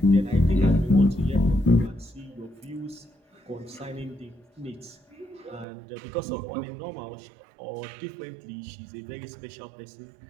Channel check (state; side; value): drops out; left; at 5.7 s